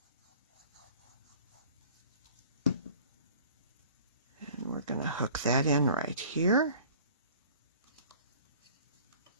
And we're going to hook that in right here.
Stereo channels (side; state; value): both; inverted; correlation -0.48